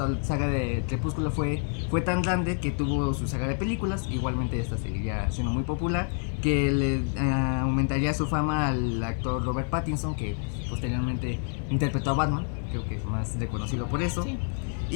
de Crepúsculo fue tan grande que tuvo su saga de películas. Igualmente esta seguiría siendo muy popular, que le aumentaría su fama al actor Robert Pattinson, que posteriormente interpretó a Batman, creo que es más reconocido por eso. Sí.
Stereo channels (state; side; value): silent; right; 56 dB below the other